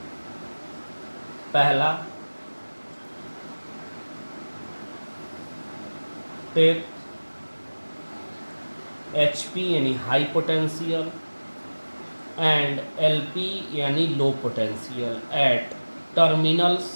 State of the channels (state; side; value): inverted; both; correlation -1.00